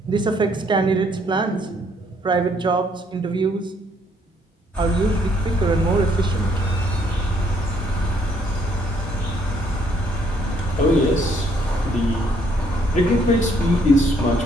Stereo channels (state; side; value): normal; both; correlation 0.67